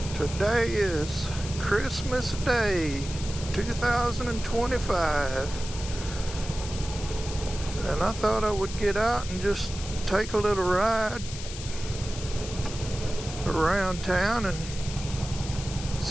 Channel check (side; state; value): left; noise; hiss, 11 dB below the sound